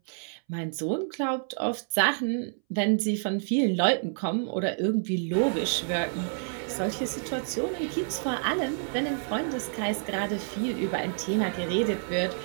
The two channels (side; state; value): left; silent; 59 dB below the other